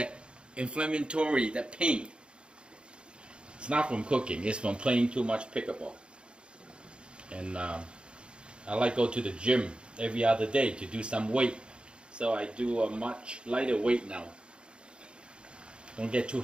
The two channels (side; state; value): left; late; 0.054 ms